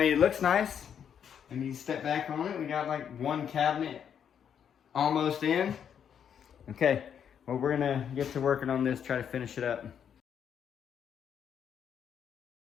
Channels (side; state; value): right; quieter; 8.3 dB